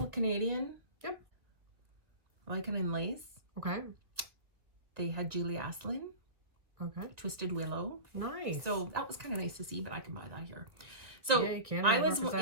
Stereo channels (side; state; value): left; late; 1.6 ms